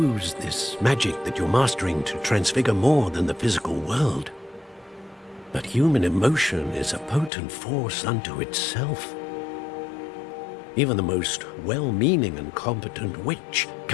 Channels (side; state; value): right; drops out; at 7.3 s